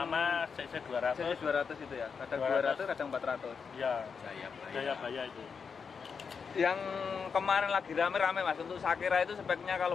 CC 200. CC 200 itu ya? Kadang 200, 200, kadang 400. Iya, Jayabaya itu. Yang kemarin lagi rame-rame Mas, untuk Sakera itu speknya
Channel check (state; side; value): quieter; right; 5.9 dB